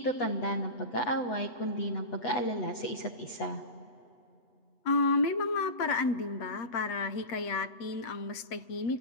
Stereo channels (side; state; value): right; late; 8.1 ms